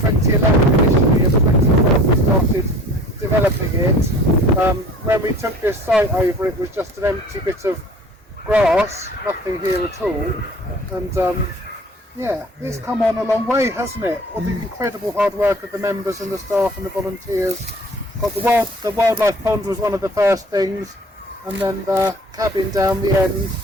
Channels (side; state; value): both; normal; correlation 0.47